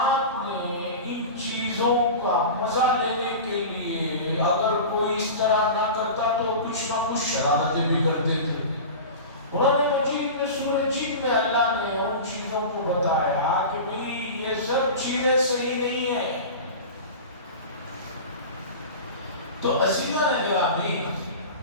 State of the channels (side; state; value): both; inverted; correlation -0.31